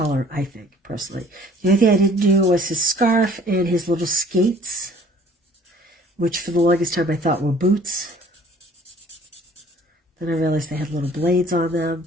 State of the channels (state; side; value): normal; both; correlation 0.54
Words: I think, personally. The only thing I didn't do was his scarf and his little skates, which for the longest time I thought were boots. Then I realized they had little blades on them.